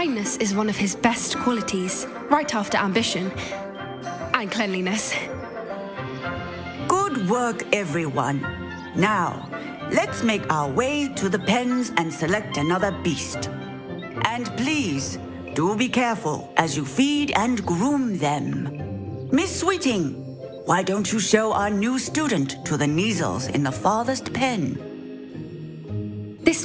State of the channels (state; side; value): identical; both; correlation 1.00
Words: is one of his best qualities, right after ambition and cleanliness. Good work, everyone. Now, let's make our way to the pens and select another beast. And please, do be careful as you feed and groom them. Miss Sweeting, why don't you show our new student to the Neasels in the farthest pen?